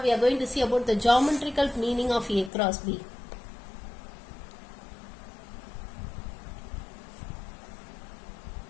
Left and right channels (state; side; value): drops out; right; at 2.5 s